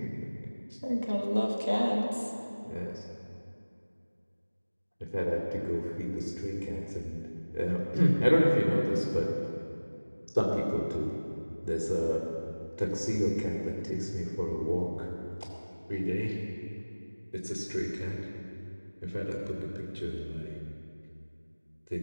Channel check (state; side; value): inverted; both; correlation -1.00